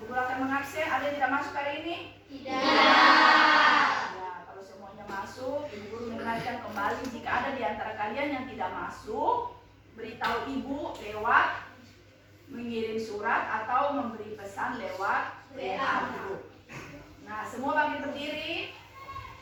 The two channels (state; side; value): identical; both; correlation 1.00